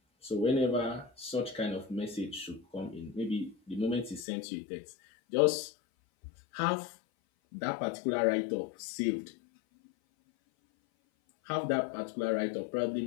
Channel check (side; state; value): right; drops out; at 4.2 s